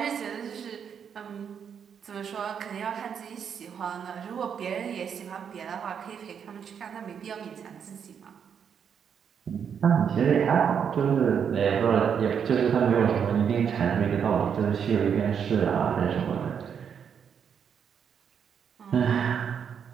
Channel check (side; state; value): left; quieter; 7.5 dB